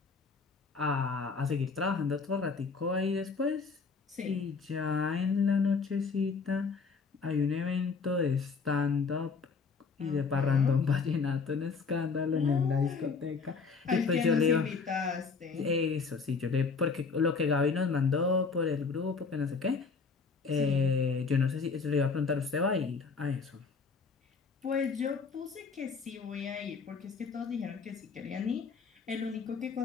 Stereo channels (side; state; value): right; quieter; 4.9 dB